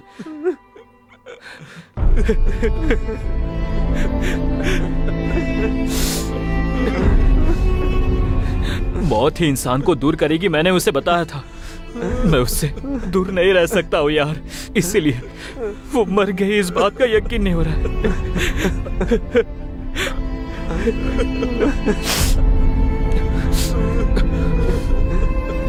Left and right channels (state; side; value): identical; both; correlation 1.00